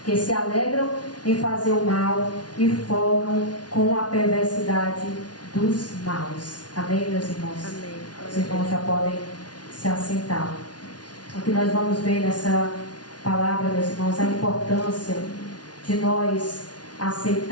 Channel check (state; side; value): late; right; 0.69 ms